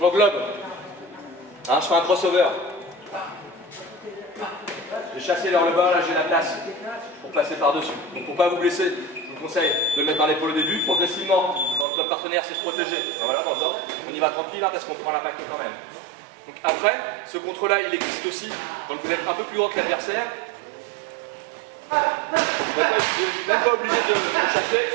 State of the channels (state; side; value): drops out; left; at 11.9 s